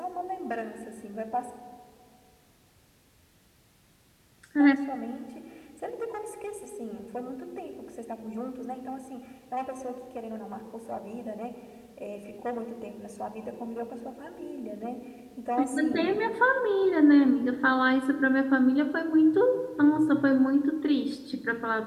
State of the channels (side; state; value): both; identical; correlation 1.00